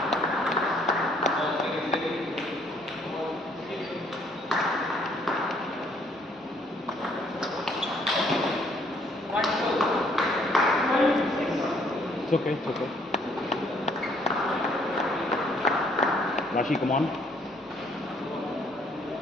It's okay. Rashi, come on.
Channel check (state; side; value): normal; both; correlation 0.65